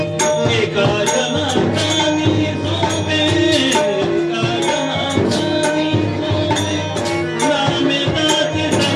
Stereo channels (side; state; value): both; identical; correlation 1.00